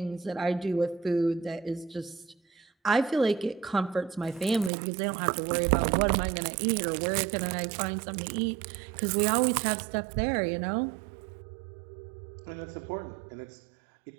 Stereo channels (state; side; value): drops out; left; at 4.7 s